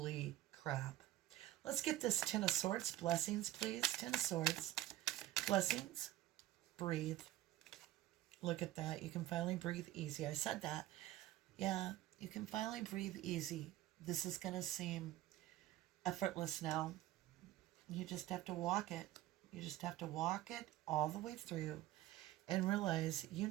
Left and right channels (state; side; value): quieter; left; 14.9 dB